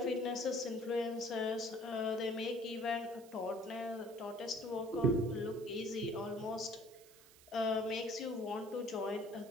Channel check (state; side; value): noise; right; hiss, 22 dB below the sound